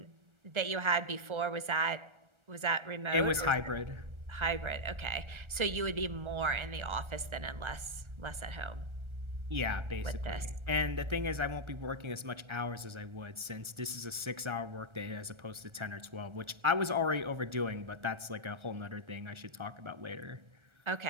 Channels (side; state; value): left; late; 1.3 ms